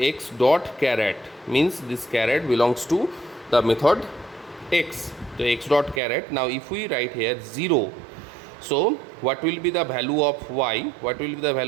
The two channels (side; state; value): left; drops out; at 6.0 s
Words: dot char at means this char at belongs to the method x, so x dot char at. Now if we write here 0, so what will be the value of y? What will be the